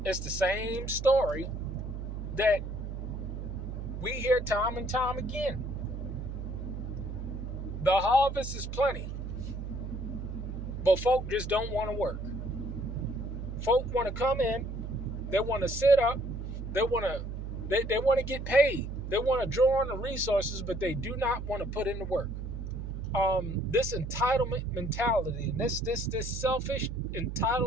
it's the same story that we hear time and time again. The harvest is plenty, but folk just don't want to work. Folk want to come in, They want to sit up. They want to get paid. They want to draw on the resources, but they do not want to put in the work. This entitlement mentality and this selfish,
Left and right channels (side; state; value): right; noise; hum, 6 dB below the sound